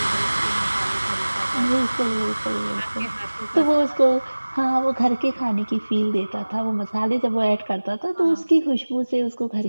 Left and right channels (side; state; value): both; inverted; correlation -1.00